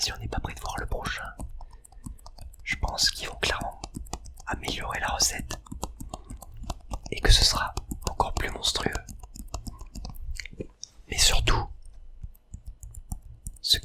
on n'est pas prêt de voir le prochain, je pense qu'ils vont clairement améliorer la recette et que ce sera encore plus monstrueux. Mais surtout, ce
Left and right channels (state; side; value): identical; both; correlation 1.00